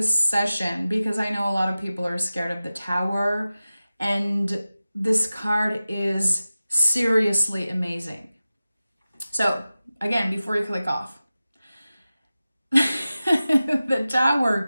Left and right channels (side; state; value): both; inverted; correlation -0.96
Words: session, because I know a lot of people are scared of the Tower, and this card is seriously amazing. So again, before you click off, the Tower